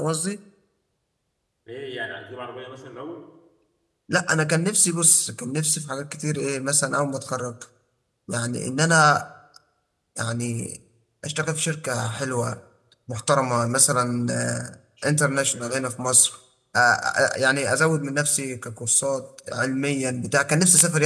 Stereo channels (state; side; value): identical; both; correlation 1.00